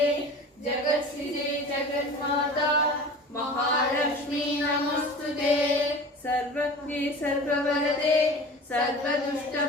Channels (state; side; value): normal; both; correlation 0.38